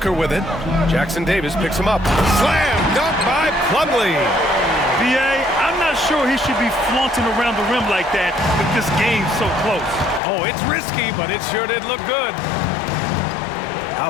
with it. Jackson Davis picks him up. Slam dunk by Plumlee. B.A., I'm not sure he should be flaunting around the rim like that with this game so close. Oh, it's risky, but it sure did look good.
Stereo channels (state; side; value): drops out; right; at 10.2 s